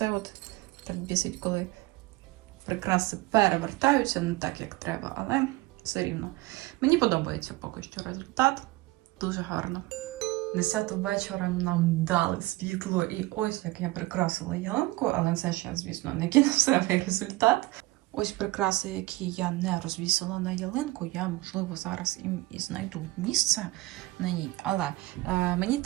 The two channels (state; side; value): quieter; left; 20.2 dB